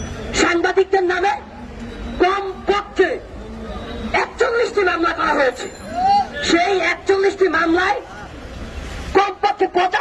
সাংবাদিকদের নামে কমপক্ষে 41টি মামলা করা হয়েছে। সেই 41টি মামলায় কমপক্ষে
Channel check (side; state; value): both; identical; correlation 1.00